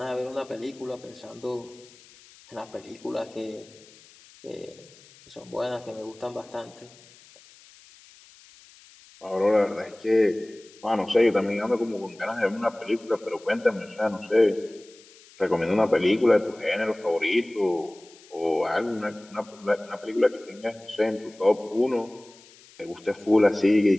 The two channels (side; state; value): left; noise; hiss, 24 dB below the sound